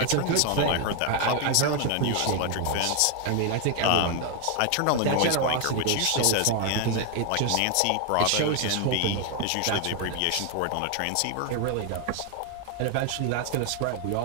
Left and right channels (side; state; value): both; different; correlation 0.01